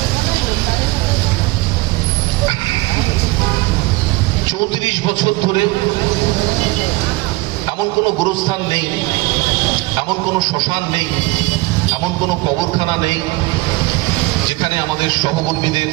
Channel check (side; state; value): left; quieter; 21.8 dB